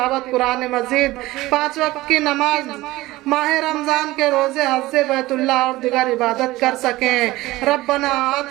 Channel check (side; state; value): left; quieter; 18.4 dB